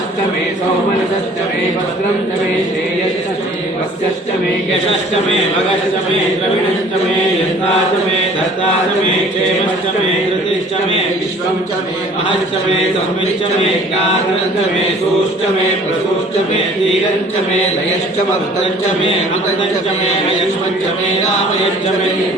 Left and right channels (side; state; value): both; normal; correlation 0.51